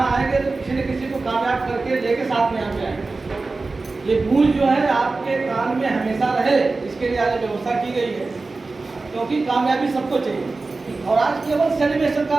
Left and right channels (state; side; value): quieter; left; 3.7 dB